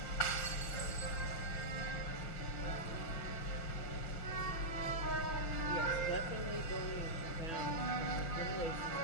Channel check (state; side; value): late; right; 6.4 ms